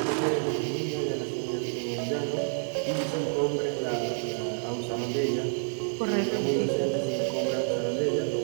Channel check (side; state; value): left; silent; 59 dB below the other